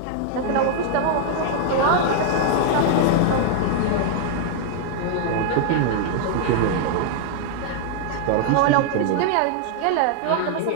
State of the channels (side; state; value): both; different; correlation -0.01